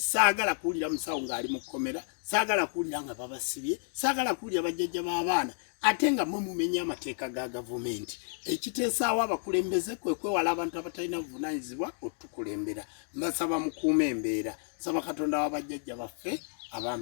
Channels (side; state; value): right; silent; digital silence